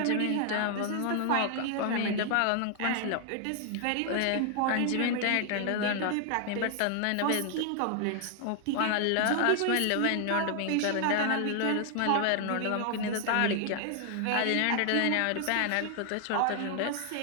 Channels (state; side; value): different; both; correlation 0.00